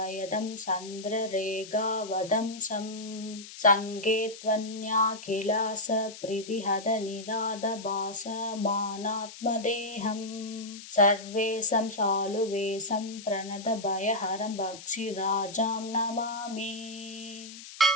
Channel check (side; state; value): left; noise; hiss, 15 dB below the sound